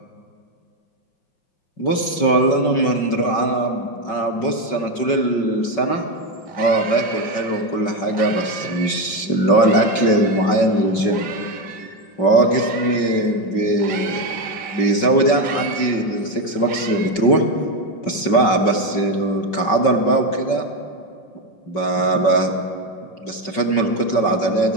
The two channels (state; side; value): late; right; 5.3 ms